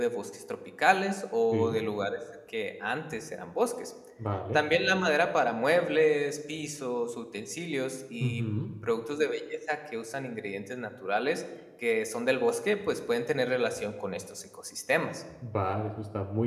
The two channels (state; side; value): identical; both; correlation 1.00